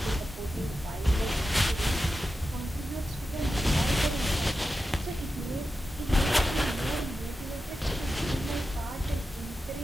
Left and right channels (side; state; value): both; normal; correlation 0.91